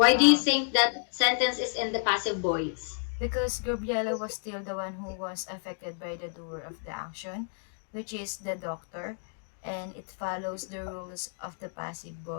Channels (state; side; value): silent; right; 58 dB below the other